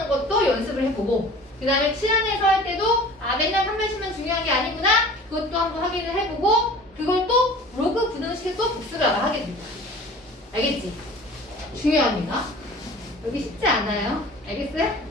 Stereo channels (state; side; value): normal; both; correlation 0.43